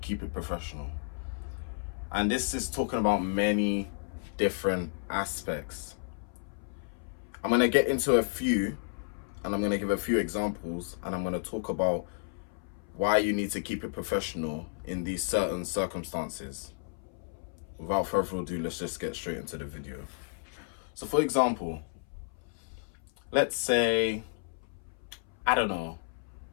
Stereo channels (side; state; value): right; silent; 56 dB below the other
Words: Keep It Professional. And this is talking about many different aspects. I'm going to get into a few, and I'm going to give a few examples, and I'm going to talk about why you need to keep it professional in these certain circumstances. Without further ado, let's just get straight into the video. So for example, let's say, I don't know,